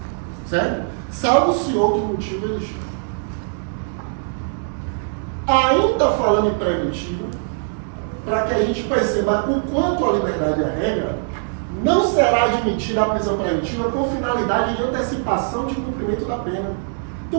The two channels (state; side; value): silent; left; digital silence